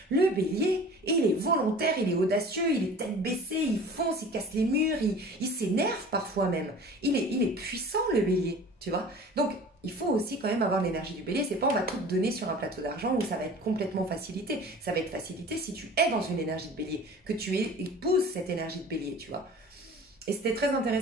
Le bélier, il est volontaire, il est audacieux, il est tête baissée, il fonce, il casse les murs, il s'énerve parfois même. Il est puissant le bélier, tu vois. Donc, il faut aussi quand même avoir l'énergie du bélier. C'est pas on va tout te donner sur un plateau d'argent où ça va être complètement facilité. Ça va être facilité si tu es dans une énergie de bélier, que tu épouses cette énergie de bélier, tu vois. Et c'était très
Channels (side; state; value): both; normal; correlation 0.42